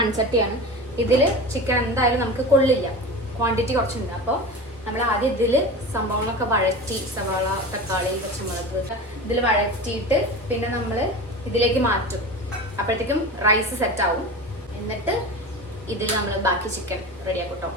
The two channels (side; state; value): both; normal; correlation 0.30